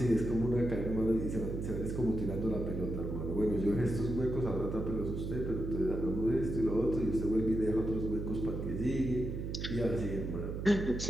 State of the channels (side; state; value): right; noise; hum, 4 dB below the sound